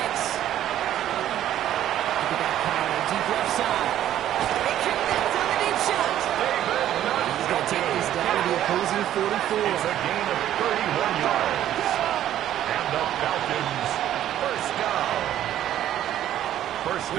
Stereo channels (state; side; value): quieter; left; 11.9 dB